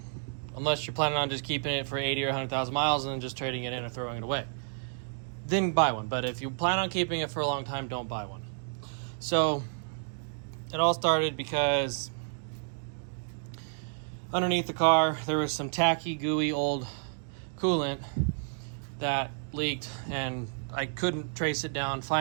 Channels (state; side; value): silent; left; digital silence